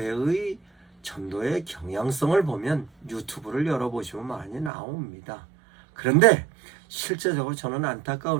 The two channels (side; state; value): left; drops out; at 4.7 s